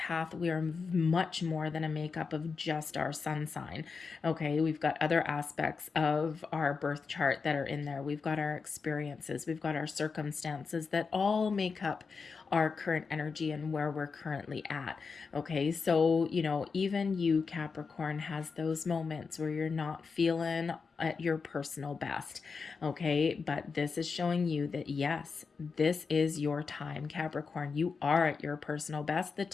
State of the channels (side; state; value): right; quieter; 5.0 dB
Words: We are much more than a makeup of just our sun sign. Okay. We've got other aspects of our birth chart that are in there. We've got our experiences. We've got our circumstances that all make up our current energy and where we're currently at. Okay, so even you, Capricorn, has those moments where you're not feeling at your personal best. Okay, but this is showing you that yes, this is your time, Capricorn. You are at your personal best. The